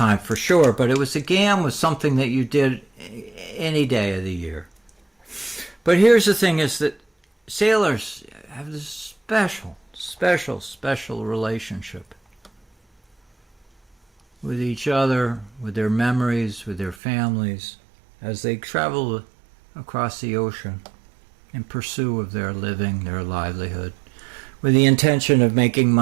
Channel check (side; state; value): left; drops out; at 16.9 s